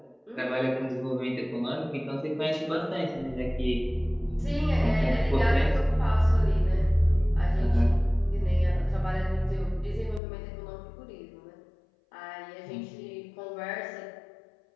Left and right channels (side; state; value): right; drops out; at 10.2 s